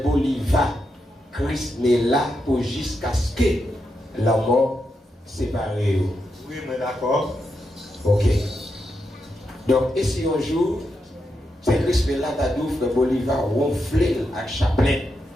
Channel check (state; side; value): normal; both; correlation 0.84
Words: Bolivar, Christ n'est là pour jusqu'à ce que la mort sépare? Oui, mais d'accord. Ok. Donc, et si un jour, c'est Christ là, t'as dit, frère Bolivar, ronflé avec chapelet,